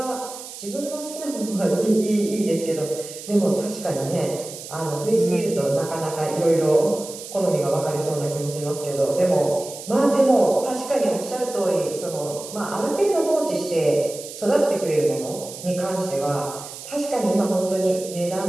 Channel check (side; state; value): right; noise; hiss, 12 dB below the sound